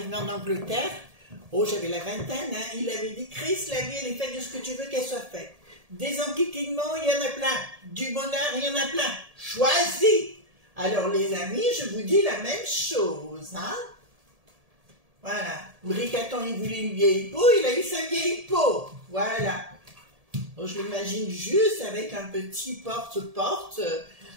en Angleterre, oh, j'avais la vingtaine, hein, il avait dit, Chris, la vie, elle est faite de ce que tu veux qu'elle soit faite. Des enquiquinnements, il y en a plein. Du bonheur, il y en a plein. Choisis. Alors, les amis, je vous dis la même chose, hein. Voilà. Bricaton, il voulait une vieille peau, il a eu sa vieille peau. Voilà. Bon, je l'imagine juste avec un petit porte-porte.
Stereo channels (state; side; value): late; left; 1.7 ms